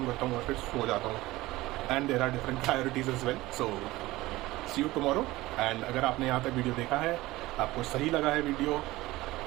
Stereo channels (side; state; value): left; quieter; 18.6 dB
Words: करता हूँ और फिर सो जाता हूँ। And there are different priorities as well, so see you tomorrow. And अगर आपने यहाँ तक वीडियो देखा है, आपको सही लगा है वीडियो,